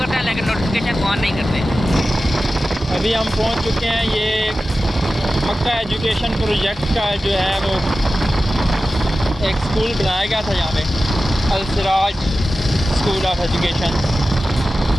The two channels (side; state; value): both; normal; correlation 0.94